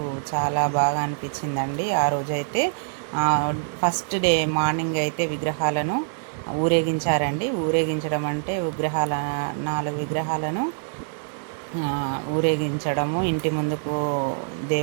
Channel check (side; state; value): left; silent; digital silence